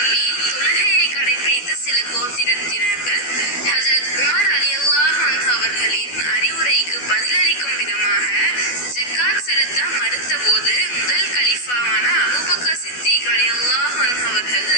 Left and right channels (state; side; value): late; right; 12 ms